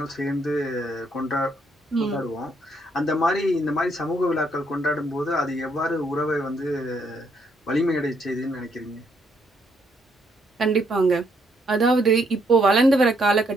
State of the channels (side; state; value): both; normal; correlation 0.72